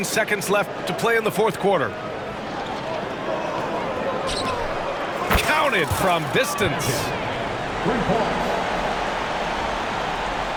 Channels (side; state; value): both; identical; correlation 1.00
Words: seconds left to play in the fourth quarter. Counted from distance.